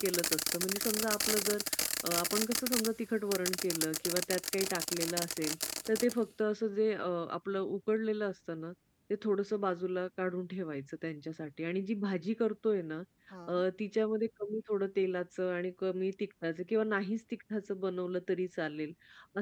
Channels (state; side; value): identical; both; correlation 1.00